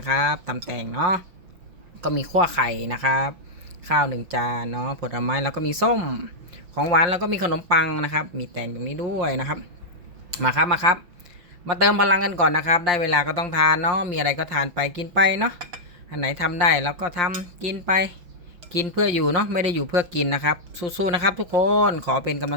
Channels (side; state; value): left; late; 5.7 ms